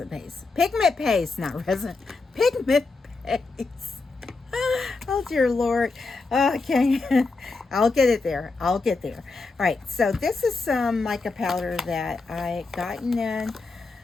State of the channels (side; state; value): right; quieter; 3.9 dB